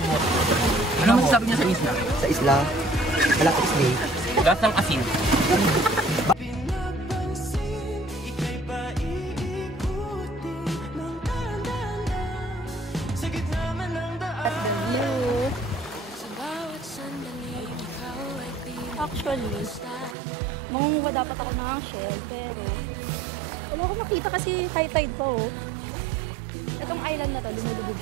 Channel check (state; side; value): drops out; left; at 20.2 s